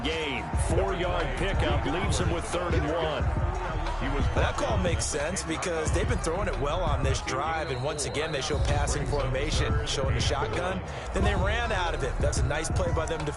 4-yard pickup leaves him with 3rd and 1. That call makes sense because they've been throwing it well on this drive, and once again they show passing formation, showing the shotgun. Then they ran out of it. That's a nice play by them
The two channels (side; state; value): both; identical; correlation 1.00